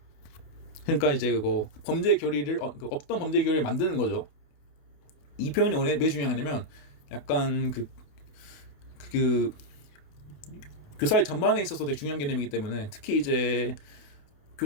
그러니까 이제 그거 범죄 결의를 없던 범죄 결의를 만드는 거죠. 이 표현이 왜 중요하냐면 약간 그 교사의 전반에 있어서 되게 중요한 개념이기 때문에, 특히 이제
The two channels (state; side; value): late; right; 28 ms